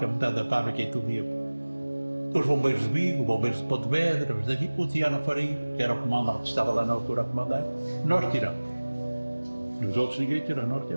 metade da fábrica e tudo ia. Os bombeiros de Vigo, os bombeiros de Pontevedra, os daqui, o Tiano Faria, que era o comandante que estava lá na altura a comandar, nós tiramos. Os outros ninguém tirou, nós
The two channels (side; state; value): both; inverted; correlation -1.00